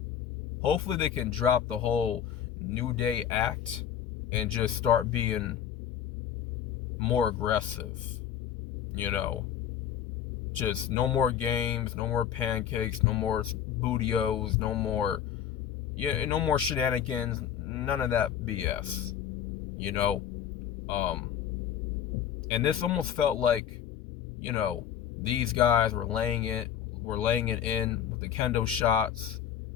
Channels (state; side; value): quieter; right; 9.6 dB